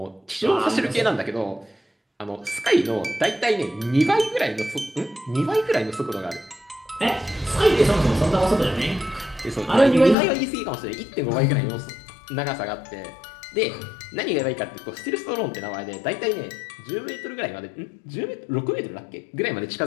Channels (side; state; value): right; drops out; at 10.2 s